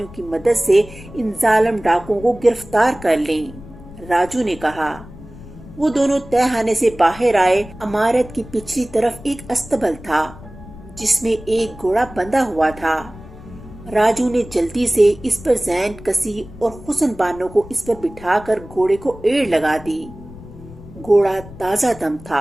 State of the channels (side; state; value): left; noise; rumble, 17 dB below the sound